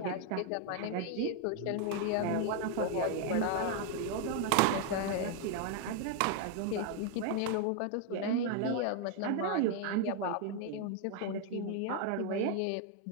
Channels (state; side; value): different; both; correlation 0.01